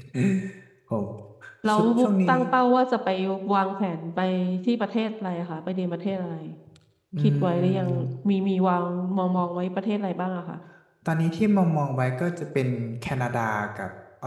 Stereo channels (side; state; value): both; identical; correlation 1.00